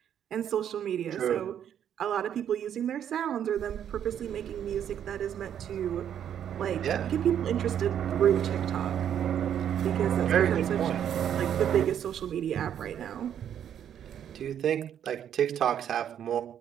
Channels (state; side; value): quieter; left; 9.5 dB